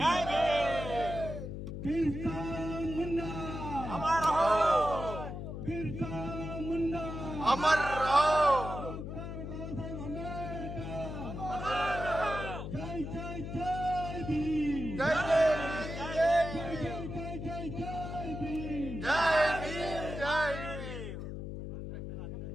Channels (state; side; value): noise; left; hum, 7 dB below the sound